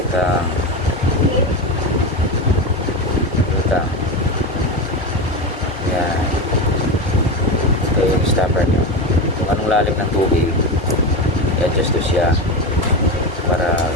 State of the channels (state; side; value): normal; both; correlation 0.19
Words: Yan. Ito yung stopper nyo. Kung anong lalim ng tubig, i-adjust to siya para